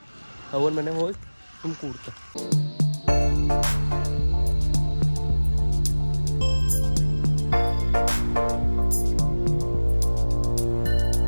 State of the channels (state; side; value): inverted; both; correlation -1.00